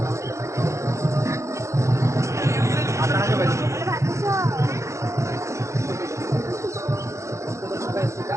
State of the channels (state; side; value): late; left; 0.14 ms